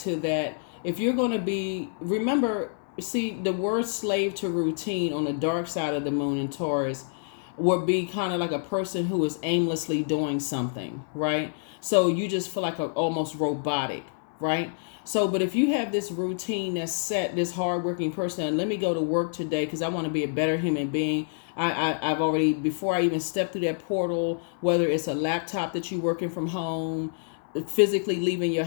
that. If you're going to be, remember, see, the word slave to routine on the dark side of the moon in Taurus would be kind of like a person who is aimlessly doing something, right? So you just feel like almost robotic, right? So, but if you have this routine that's set, this hardworking person, and let me go to work today because I want to be a better human being. I've already, before I even step through that portal, whether it's a laptop that you're working from home, physically leaving your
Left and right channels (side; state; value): right; silent; 60 dB below the other